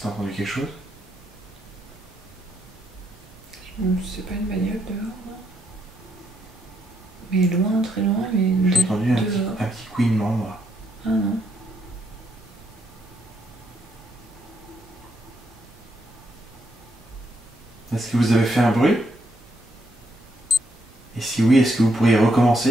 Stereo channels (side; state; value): both; normal; correlation 0.76